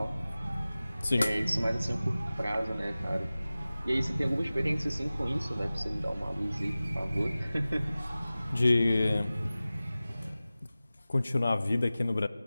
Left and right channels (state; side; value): inverted; both; correlation -0.97